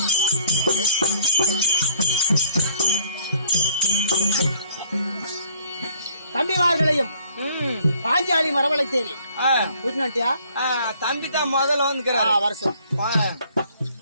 தம்பிமார்களையும் பாஞ்சாலி மரவளைத்தேனே புரிஞ்சுட்டியா? தம்பி தான் முதல்ல வந்துக்கிறாரு வருஷம்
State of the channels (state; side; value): inverted; both; correlation -0.57